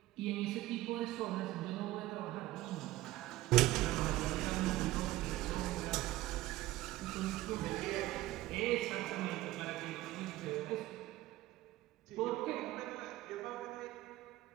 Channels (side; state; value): left; quieter; 16.9 dB